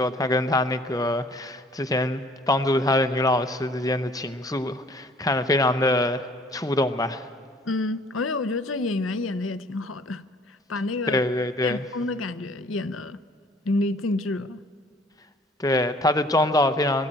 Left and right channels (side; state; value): both; normal; correlation 0.55